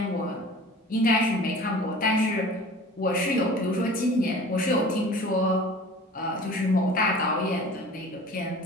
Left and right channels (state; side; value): normal; both; correlation 0.42